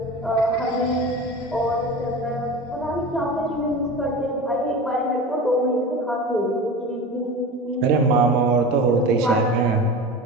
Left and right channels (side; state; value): both; normal; correlation 0.31